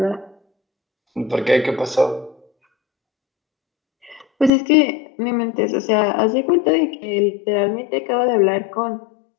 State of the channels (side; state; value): right; drops out; at 4.5 s